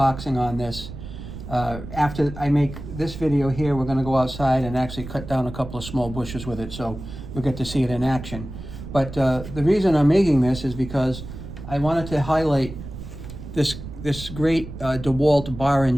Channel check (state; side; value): noise; right; rumble, 11 dB below the sound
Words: on this. After I make this video here, we're gonna go outside and actually cut down a couple of small bushes with it, so you'll get to see it in action. But the reason I'm making this is because I wanted to highlight this great DEWALT bar and